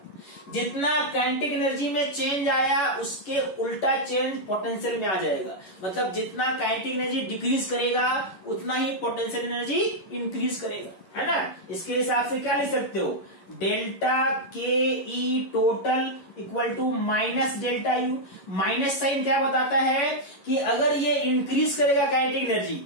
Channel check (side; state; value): right; late; 11 ms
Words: जितना काइनेटिक एनर्जी में चेंज आया उसके उल्टा चेंज पोटेंशियल में आ जाएगा। मतलब जितना काइनेटिक एनर्जी डिक्रीज करेगा उतना ही पोटेंशियल एनर्जी इंक्रीज करेगा, है ना। इसके हिसाब से क्या लिख सकते हो, delta K E total equal to minus delta U. Minus sign क्या बताता है कि अगर ये इंक्रीज करेगा काइनेटिक एनर्जी